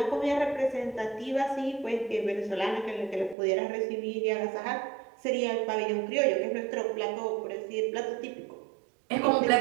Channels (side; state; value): left; drops out; at 3.4 s